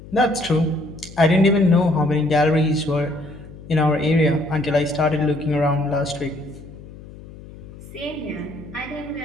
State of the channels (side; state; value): left; noise; hum, 17 dB below the sound